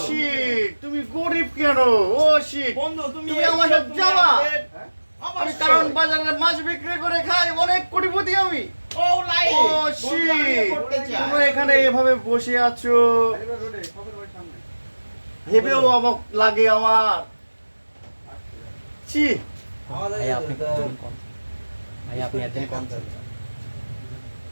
শিট, তুমি গরিব কেন? ও শিট, বন্ধু তুমি তুমি আমার সাথে যাবা? আমি অবশ্যই। কারণ বাজারে মাছ বিক্রি করে খাই, অনেক কোটিপতি আমি। ও লাই ও শিট, করতে চাই। তোমরা এখানে এভাবে বসে আছো, ভেবেও অবাক লাগে আমার। ছি, ভাই আপনি কম ভাই আপনি একদিন কম ছিল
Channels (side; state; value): both; inverted; correlation -1.00